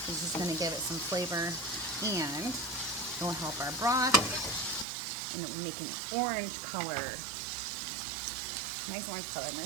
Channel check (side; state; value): left; drops out; at 4.9 s